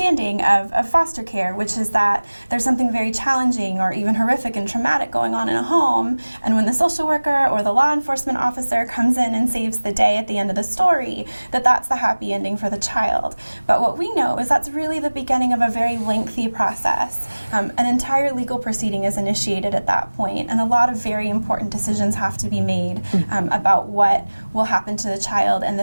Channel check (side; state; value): both; inverted; correlation -1.00